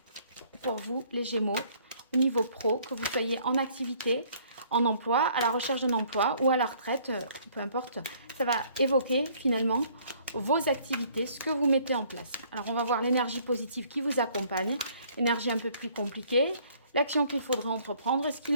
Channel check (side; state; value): both; inverted; correlation -0.60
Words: pour vous, les Gémeaux, au niveau pro, que vous soyez en activité, en emploi, à la recherche d'un emploi ou à la retraite, peu importe. Ça va évoquer finalement vos activités, ce que vous mettez en place. Alors, on va voir l'énergie positive qui vous accompagne, l'énergie un peu plus compliquée, l'action qu'il faudrait entreprendre et ce